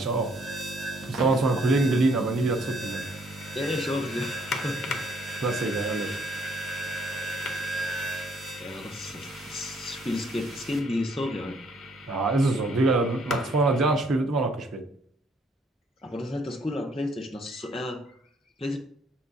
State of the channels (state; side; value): normal; both; correlation 0.66